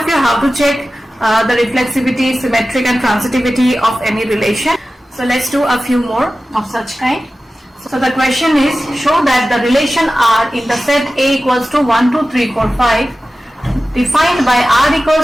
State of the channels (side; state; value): both; normal; correlation 0.95